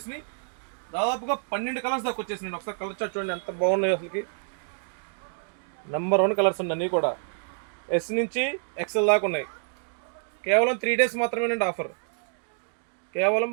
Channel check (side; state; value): left; silent; digital silence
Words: దాదాపుగా 12 కలర్స్ దాకా వచ్చేసినాయి. ఒకసారి కలర్ చార్ట్ చూడండి ఎంత బాగున్నాయి. అసలుకి నెంబర్ 1 కలర్స్ అండి అన్నీ కూడా. ఎస్ నుంచి ఎక్స్ఎల్ దాకా ఉన్నాయి. కేవలం 3 డేస్ మాత్రమేనండి ఆఫర్. కేవలం